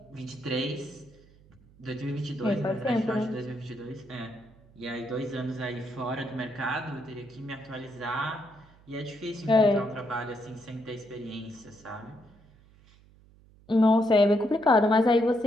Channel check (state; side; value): noise; right; hum, 27 dB below the sound